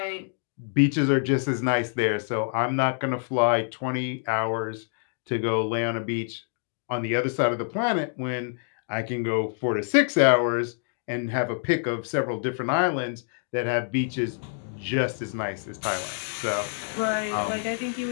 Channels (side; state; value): right; silent; 60 dB below the other